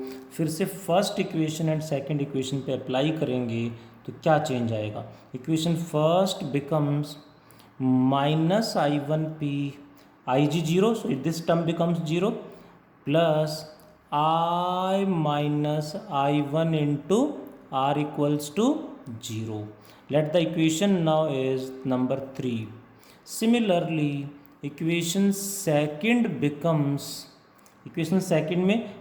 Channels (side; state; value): both; identical; correlation 1.00